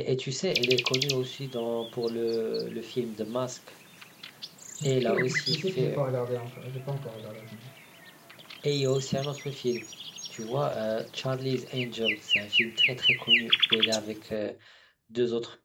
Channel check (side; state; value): both; identical; correlation 1.00